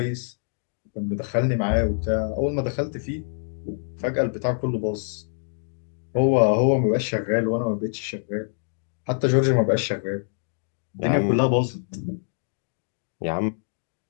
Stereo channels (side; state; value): right; silent; digital silence